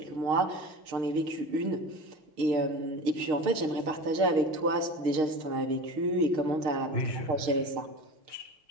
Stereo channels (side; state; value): left; late; 6.5 ms